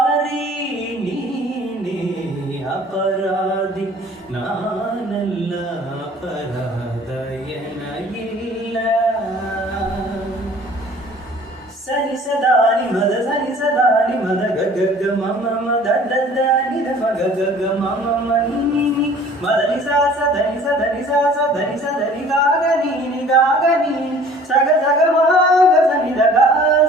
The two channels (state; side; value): normal; both; correlation 0.50